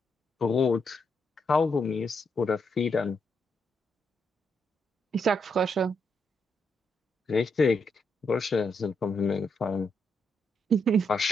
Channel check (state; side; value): normal; both; correlation 0.79